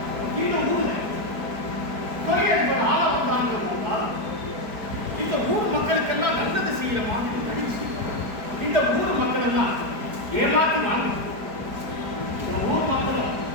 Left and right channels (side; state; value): left; late; 4.7 ms